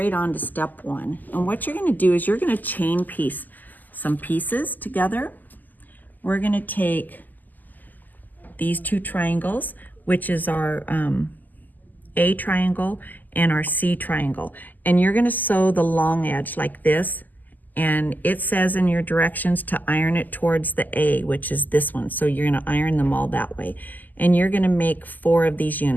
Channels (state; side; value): late; right; 0.084 ms